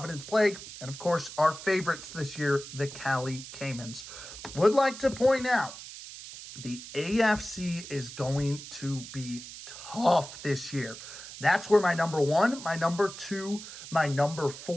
Plague. And, of course, our favorites this year, the Cali Caimans. Would like to point out, the AFC is going to be tough this year. That's where my number 1, my number 2, my number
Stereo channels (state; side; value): noise; right; hiss, 13 dB below the sound